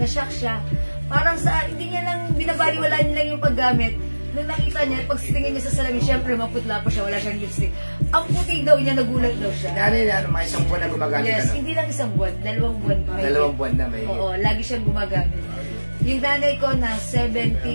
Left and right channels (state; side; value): inverted; both; correlation -1.00